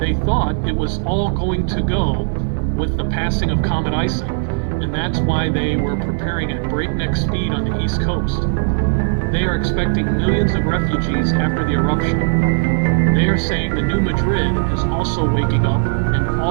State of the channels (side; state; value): left; silent; digital silence